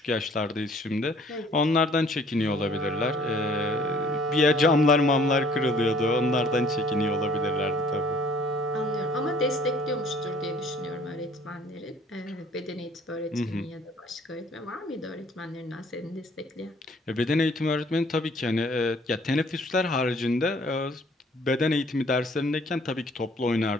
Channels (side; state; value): both; normal; correlation 0.57